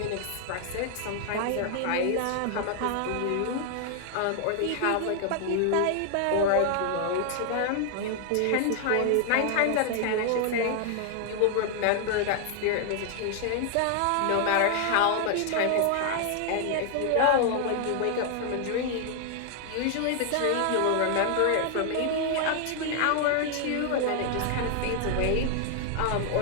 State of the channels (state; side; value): different; both; correlation 0.00